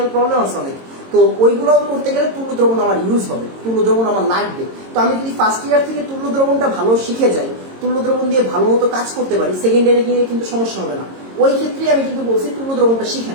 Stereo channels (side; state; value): left; late; 22 ms